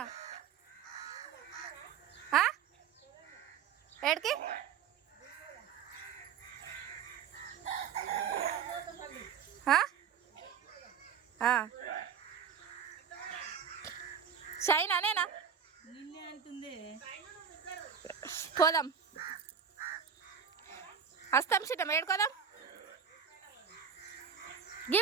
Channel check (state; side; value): quieter; left; 7.3 dB